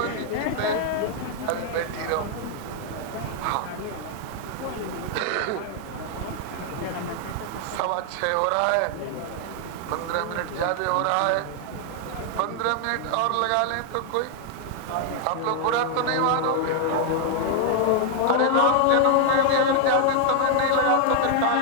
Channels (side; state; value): both; different; correlation 0.00